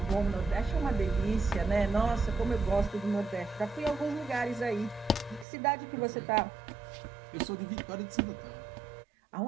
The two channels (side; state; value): left; drops out; at 5.5 s